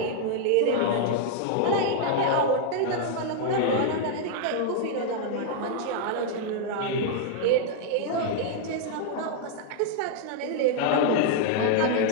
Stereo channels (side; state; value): both; different; correlation -0.01